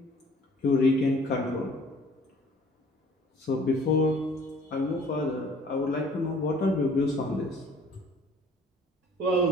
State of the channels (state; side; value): normal; both; correlation 0.53